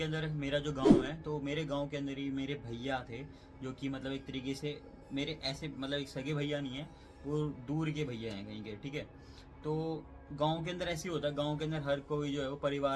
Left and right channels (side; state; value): both; identical; correlation 1.00